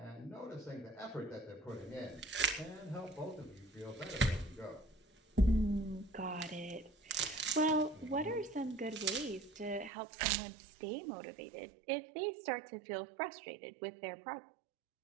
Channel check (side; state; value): left; drops out; at 9.9 s